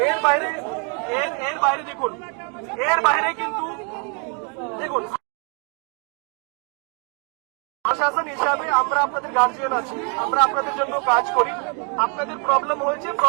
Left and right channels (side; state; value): left; quieter; 37.7 dB